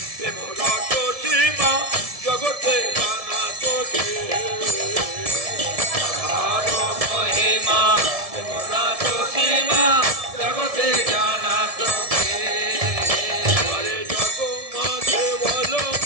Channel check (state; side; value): late; left; 1.7 ms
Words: প্রেম রস সীমা জগতে জানা তোকে রাধার মহিমা প্রেম রস সীমা জগতে জানা তোকে আরে জগ মাঝে বলো